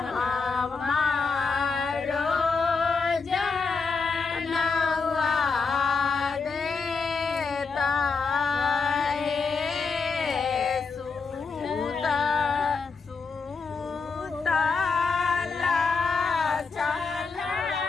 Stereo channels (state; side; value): quieter; right; 4.8 dB